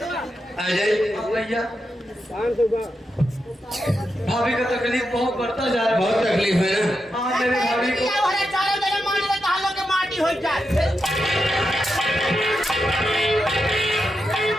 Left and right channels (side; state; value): both; normal; correlation 0.87